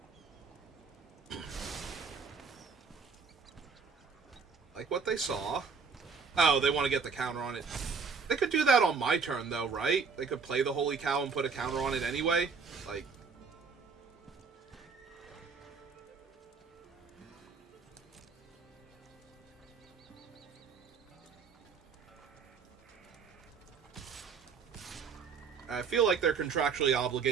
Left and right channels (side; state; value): left; quieter; 5.5 dB